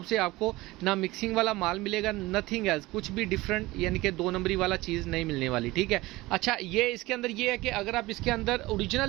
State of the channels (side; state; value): left; quieter; 19.8 dB